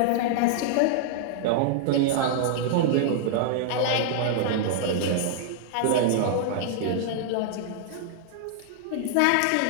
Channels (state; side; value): different; both; correlation -0.01